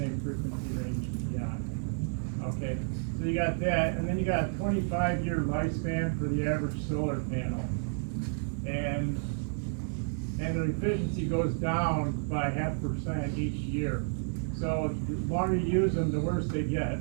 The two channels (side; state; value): left; silent; 57 dB below the other